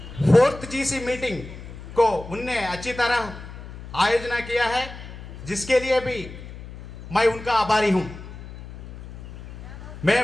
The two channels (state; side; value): noise; left; hum, 13 dB below the sound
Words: 4th GC मीटिंग को उनने अच्छी तरह आयोजना किया है, जिसके लिए भी मैं उनका आभारी हूं।